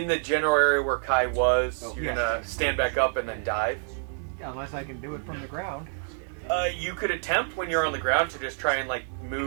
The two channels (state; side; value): silent; left; digital silence